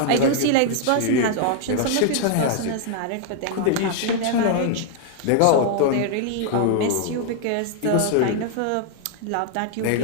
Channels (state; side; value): different; both; correlation 0.00